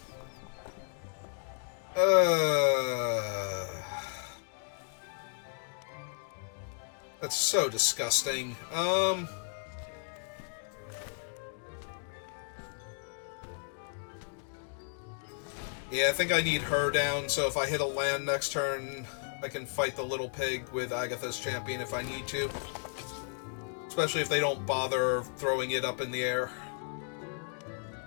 That's so disgusting. Yeah, I think I need her down, so if I hit a land next turn, I can fight the little pig with Agatha's Champion if I need to. Especially if they don't bother throwing it up in the air.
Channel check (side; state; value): right; silent; 55 dB below the other